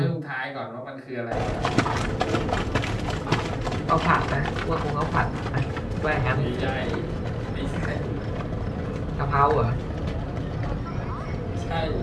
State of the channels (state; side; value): identical; both; correlation 1.00